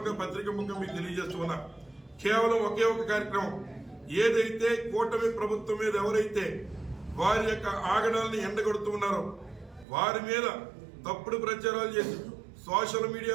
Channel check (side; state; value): left; drops out; at 9.9 s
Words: పత్రిక ముఖ్యం మీకు తెలియజేస్తూ ఉన్నా. కేవలం ఒకే ఒక కార్యక్రమం, ఏదైతే కూటమి ప్రభుత్వం మీద ఎవరైతే వారి యొక్క ఆగడాలని ఎండగొడుతూ ఉన్నారో వారి మీద తప్పుడు ప్రచారాలు చేసి సోషల్